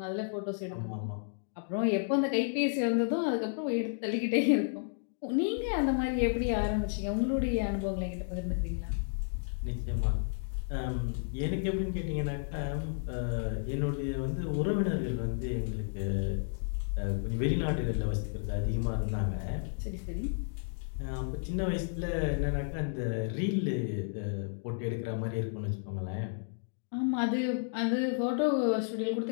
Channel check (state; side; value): silent; right; digital silence